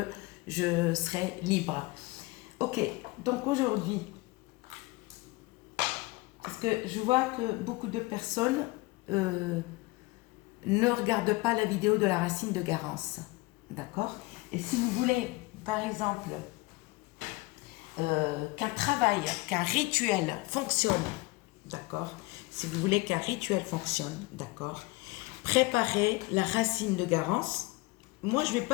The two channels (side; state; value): right; quieter; 23.0 dB